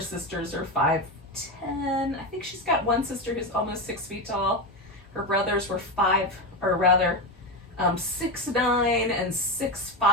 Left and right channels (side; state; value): both; normal; correlation 0.15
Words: are 5'10". I think she's got one sister who's almost 6 feet tall. Her brothers were 6'9" and 6'5".